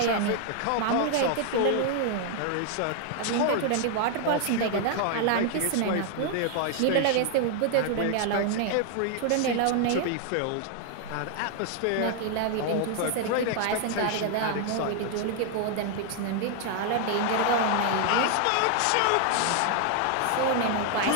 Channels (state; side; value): different; both; correlation 0.00